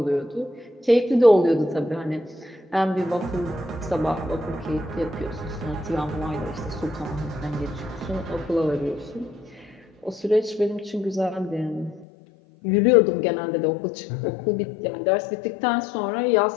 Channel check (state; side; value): drops out; right; at 12.1 s